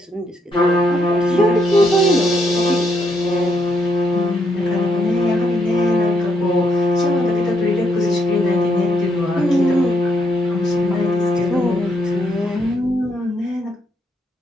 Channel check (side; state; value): both; normal; correlation 0.76